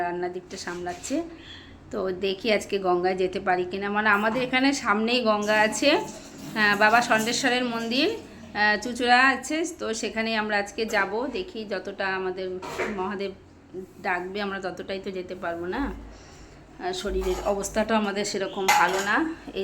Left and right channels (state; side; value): identical; both; correlation 1.00